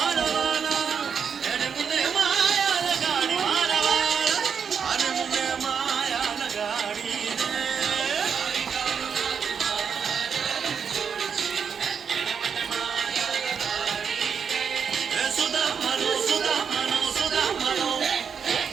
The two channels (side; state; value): left; quieter; 6.8 dB